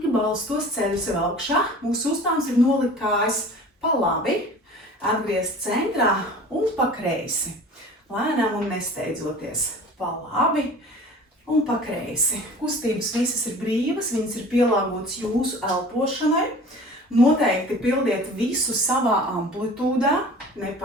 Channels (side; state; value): both; normal; correlation 0.43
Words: balstos, ceļu sev augšā. Mūsu uzdevums ir nolikt kājas pa labi, atgriezt centrā un pa kreisi. Lēnām un nesteidzoties. Pa labi un pa kreisi. Kustības visas ir brīvas, viņas ir pielāgotas jūsu elpošanai. Noteikti pildiet visu savā amplitūdā,